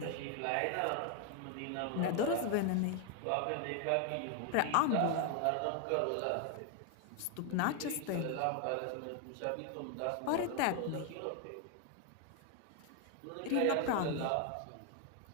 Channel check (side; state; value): both; different; correlation 0.01